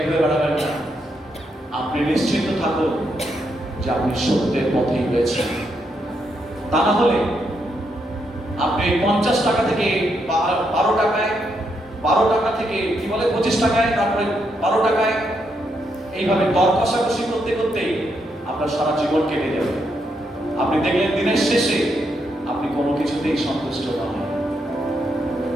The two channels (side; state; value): both; normal; correlation 0.79